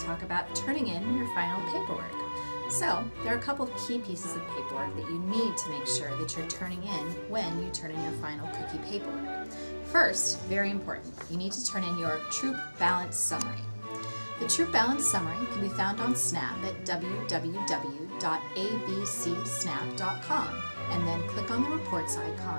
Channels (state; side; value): inverted; both; correlation -1.00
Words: talk about turning in your final paperwork. So there are a couple of key pieces of paperwork that you need to make sure that you're turning in when you turn in your final cookie paperwork. First, very important, you need to turn in your Troop Balance Summary. The Troop Balance Summary can be found on Snap at www.abcsnap.com and then click on the reports